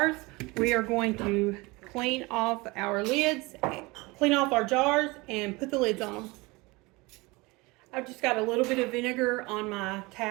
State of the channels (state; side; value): quieter; left; 23.9 dB